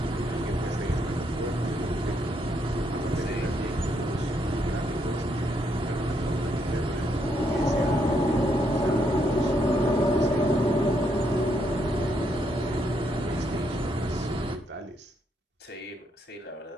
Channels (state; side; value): normal; both; correlation 0.76